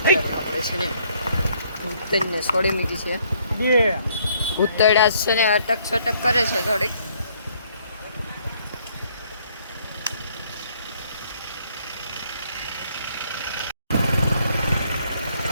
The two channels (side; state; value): both; inverted; correlation -0.66